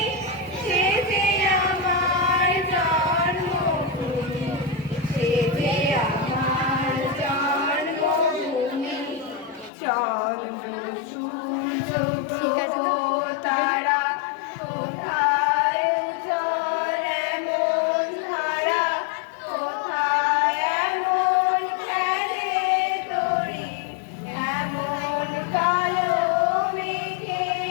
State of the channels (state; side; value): drops out; right; at 9.7 s